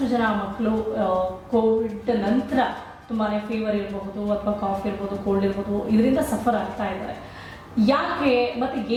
ಜನ ಮಕ್ಕಳು ಕೋವಿಡ್ ನಂತರ ತುಂಬಾ ಫೀವರ್ ಇರಬಹುದು ಅಥವಾ ಕಾಫ್ ಇರ್ಬೋದು, ಕೋಲ್ಡ್ ಇರ್ಬೋದು, ಇದರಿಂದ ಸಫರ್ ಆಗ್ತಾ ಇದ್ದಾರೆ. ಯಾಕೆ ಮತ್ತು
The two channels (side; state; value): both; identical; correlation 1.00